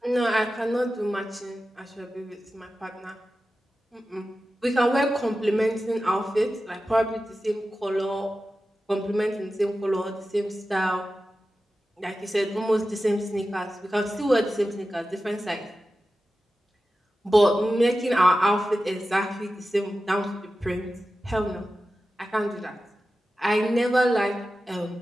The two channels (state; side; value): normal; both; correlation 0.93